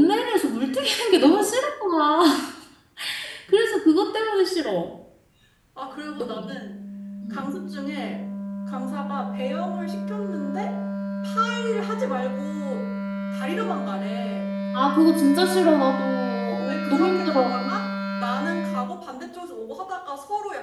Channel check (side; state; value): both; identical; correlation 1.00